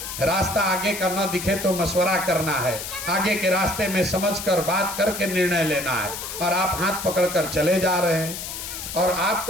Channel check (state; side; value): noise; left; hiss, 7 dB below the sound